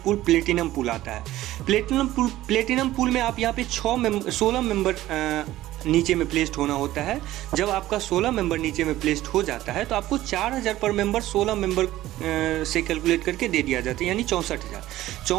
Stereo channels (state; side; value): quieter; left; 15.2 dB